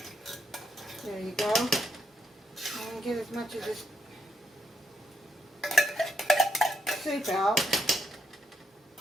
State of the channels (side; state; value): both; normal; correlation 0.78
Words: There you go. I'm going to get as much of this soup out.